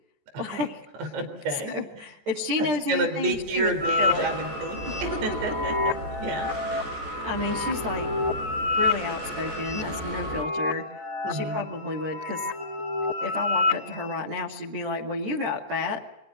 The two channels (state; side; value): late; left; 14 ms